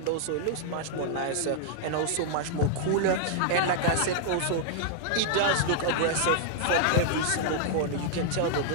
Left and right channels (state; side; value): different; both; correlation -0.01